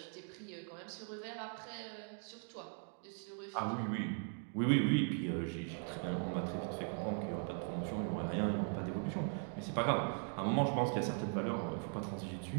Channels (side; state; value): left; silent; 51 dB below the other